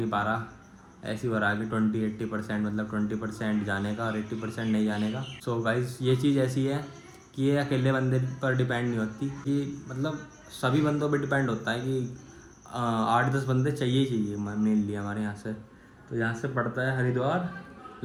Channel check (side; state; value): both; identical; correlation 1.00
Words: पा रहा, ऐसी हो रहा है कि 20-80%, मतलब 20% जाने का और 80% नहीं जाने का। सो गाइस, ये चीज़ ऐसी है कि ये अकेले बंदे पर डिपेंड नहीं होती, कि मतलब सभी बंदों पर डिपेंड होता है कि 8-10 बंदे चाहिए ही चाहिए मेनली हमारे यहाँ से। तो यहाँ से पड़ता है हरिद्वार